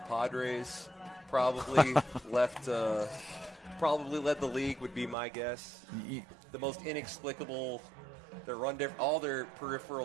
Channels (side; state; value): left; drops out; at 5.2 s